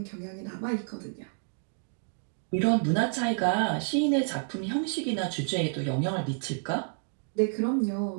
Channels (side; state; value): left; silent; digital silence